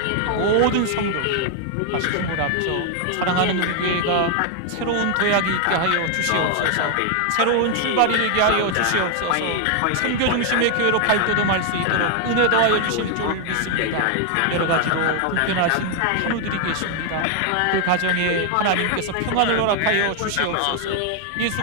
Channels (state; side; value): different; both; correlation 0.00